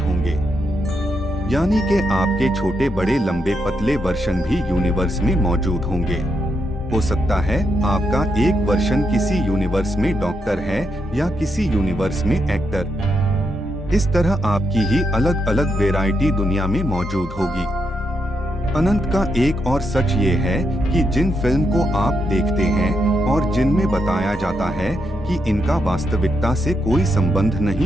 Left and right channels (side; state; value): both; normal; correlation 0.81